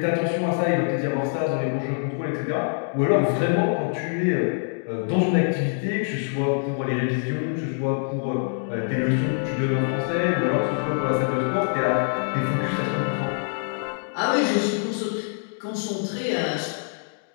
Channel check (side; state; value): right; silent; digital silence